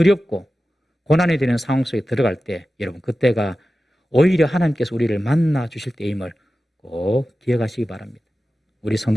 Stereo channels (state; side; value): normal; both; correlation 0.94